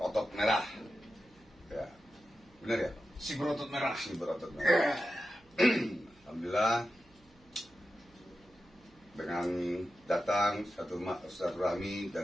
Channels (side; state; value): right; noise; hum, 30 dB below the sound